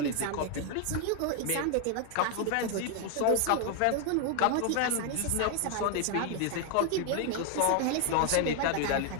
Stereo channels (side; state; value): both; different; correlation 0.00